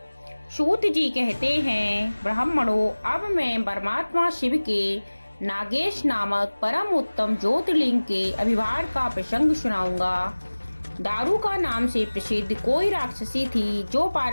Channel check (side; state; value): both; inverted; correlation -1.00